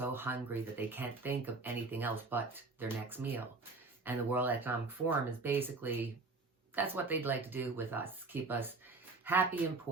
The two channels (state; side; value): quieter; left; 3.7 dB